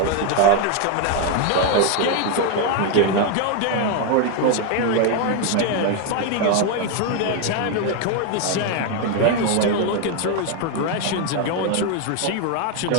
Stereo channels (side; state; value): both; different; correlation 0.01